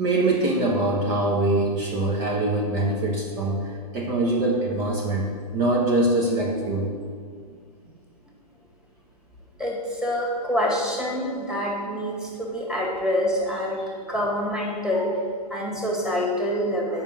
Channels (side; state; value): both; normal; correlation 0.17